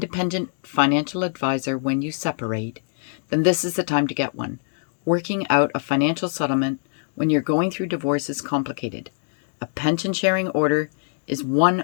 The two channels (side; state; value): right; silent; digital silence